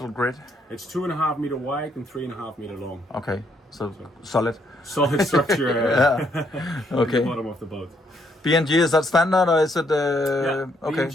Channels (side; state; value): both; normal; correlation 0.72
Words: grid? It's 2.5 meter wide and 3.5 meter long. Okay, so solid. Solid structure Okay. at the bottom of the boat. BNG, is that standard or is it? Okay.